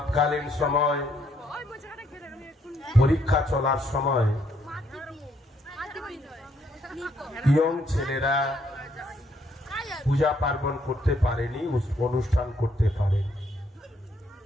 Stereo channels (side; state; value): both; normal; correlation 0.71